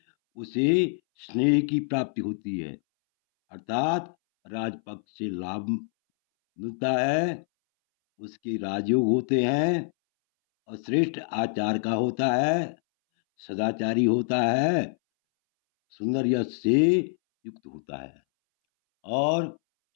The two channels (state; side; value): silent; right; 61 dB below the other